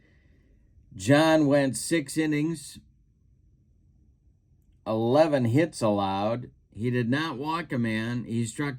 John went 6 innings, 11 hits allowed. He did not walk a man. He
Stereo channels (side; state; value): both; identical; correlation 1.00